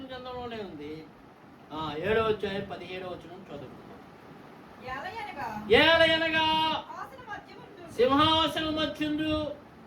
గ్రంథంలోనే ఉంది. 7వ అధ్యాయం 17వ వచనం చదువుకుందాం. ఏలయనగా సింహాసనం మధ్యందు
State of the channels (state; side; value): identical; both; correlation 1.00